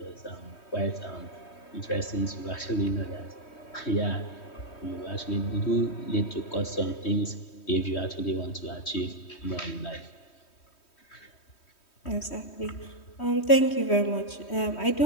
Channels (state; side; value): late; right; 3.1 ms